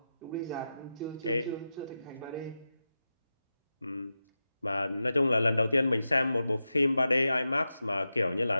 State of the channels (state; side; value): inverted; both; correlation -0.91